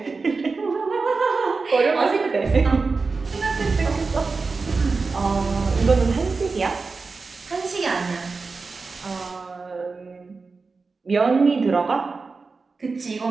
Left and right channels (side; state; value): left; quieter; 4.2 dB